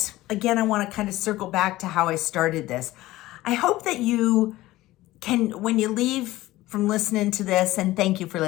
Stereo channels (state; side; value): quieter; right; 17.1 dB